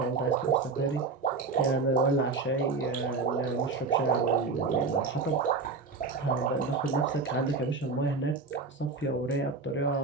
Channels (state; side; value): quieter; left; 4.3 dB